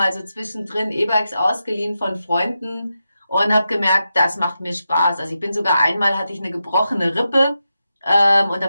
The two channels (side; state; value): both; inverted; correlation -0.89